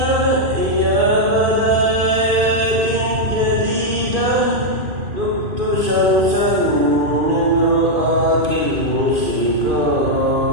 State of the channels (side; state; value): left; late; 2.5 ms